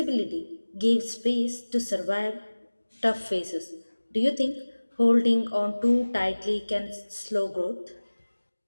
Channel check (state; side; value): inverted; both; correlation -1.00